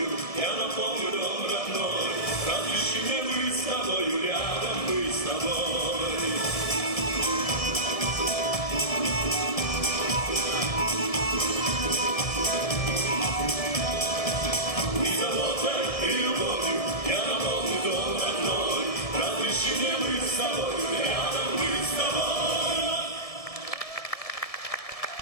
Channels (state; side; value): late; right; 1.7 ms